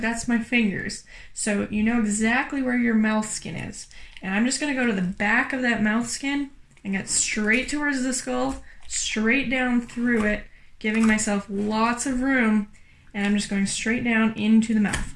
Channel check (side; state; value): both; identical; correlation 1.00